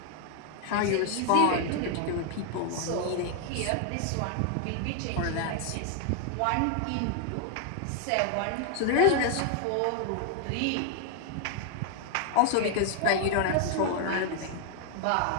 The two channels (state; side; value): different; both; correlation 0.00